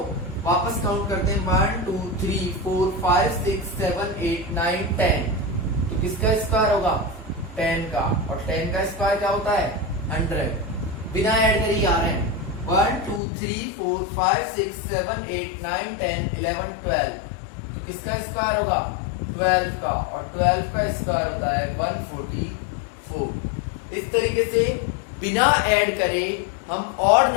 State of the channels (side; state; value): right; drops out; at 13.2 s